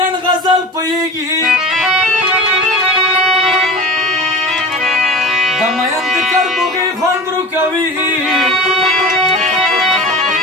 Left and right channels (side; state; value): both; normal; correlation 0.33